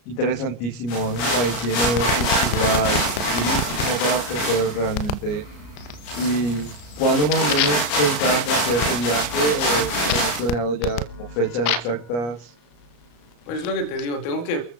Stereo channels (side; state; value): right; late; 34 ms